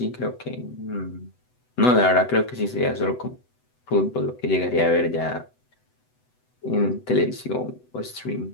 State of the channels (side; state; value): right; late; 8.0 ms